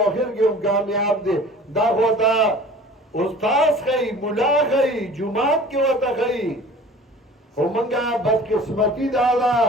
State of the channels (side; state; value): both; normal; correlation 0.45